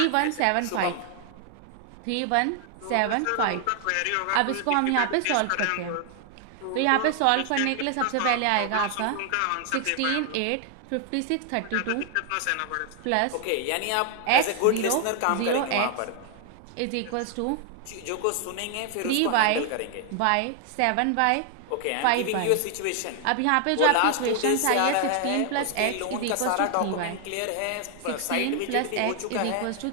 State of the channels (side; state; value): both; different; correlation 0.00